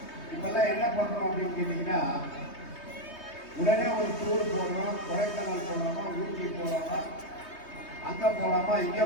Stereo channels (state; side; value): late; right; 3.2 ms